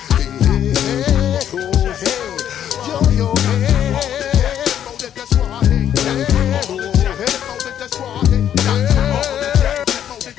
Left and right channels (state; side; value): quieter; right; 10.1 dB